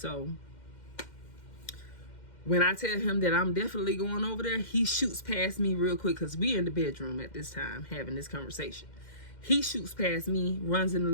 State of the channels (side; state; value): right; late; 2.1 ms